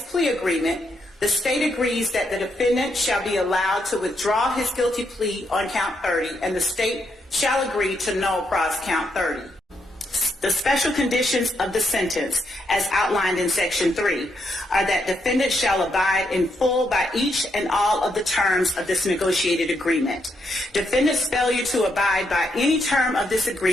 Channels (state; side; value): normal; both; correlation 0.79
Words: plea agreement, the state agrees that the defendant shall be allowed to withdraw his guilty plea on count 30, and the state shall agree to null pros count 30. The special conditions of the sentence, as outlined in Section 3, are that defendant shall abide in full by each and all of the terms of this negotiated agreement. Defendant's failure to abide by any term of this